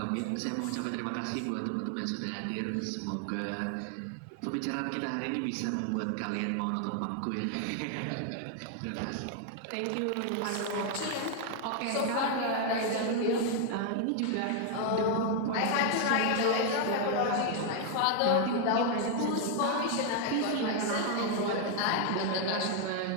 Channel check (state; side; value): different; both; correlation 0.00